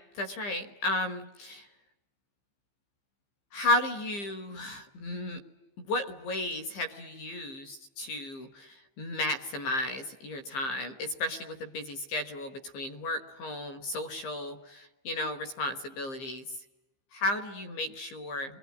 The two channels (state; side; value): late; right; 15 ms